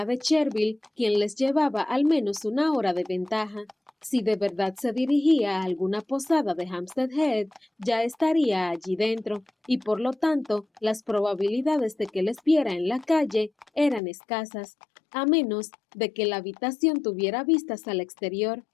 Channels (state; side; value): drops out; right; at 14.0 s